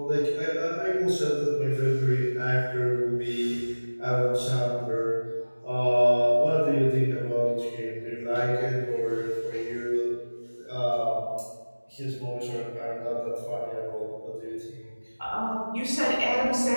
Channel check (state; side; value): inverted; both; correlation -1.00